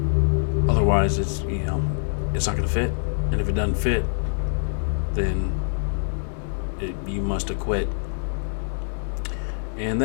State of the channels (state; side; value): silent; right; digital silence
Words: Otherwise, it's not going to fit. And if it doesn't fit, then you must have quit. And